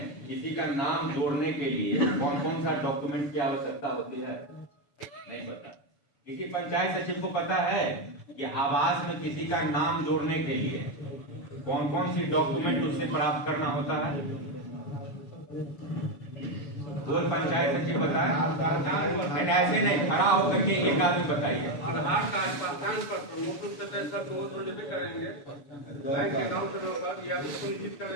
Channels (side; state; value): right; late; 7.1 ms